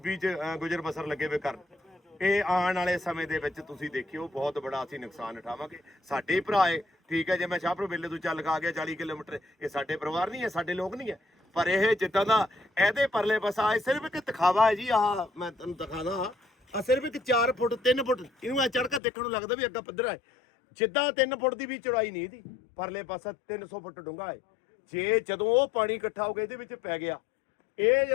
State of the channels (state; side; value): drops out; right; at 19.0 s